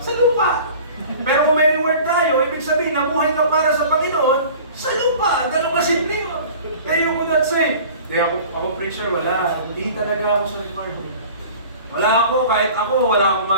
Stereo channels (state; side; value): inverted; both; correlation -0.43